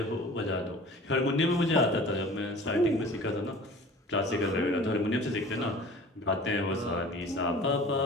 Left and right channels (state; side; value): normal; both; correlation 0.43